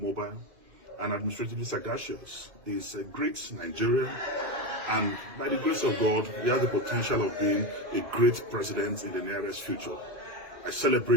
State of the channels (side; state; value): left; late; 2.4 ms